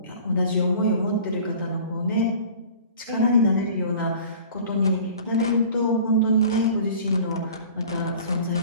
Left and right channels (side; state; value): both; inverted; correlation -0.45